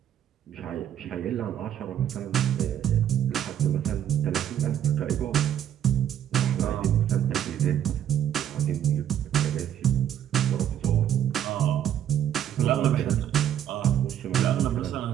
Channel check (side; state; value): left; quieter; 10.3 dB